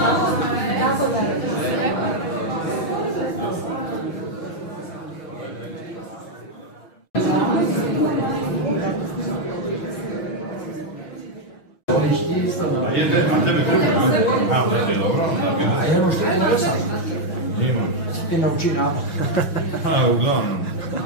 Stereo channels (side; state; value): right; late; 6.1 ms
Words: A tebe treba? A, da je dobro. A ja ono što je napisao? Nima. Ti nauči nada. A, uglavnom.